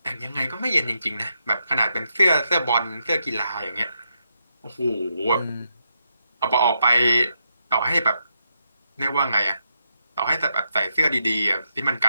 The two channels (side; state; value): both; inverted; correlation -0.83